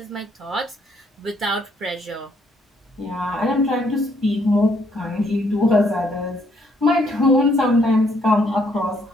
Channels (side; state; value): both; normal; correlation 0.69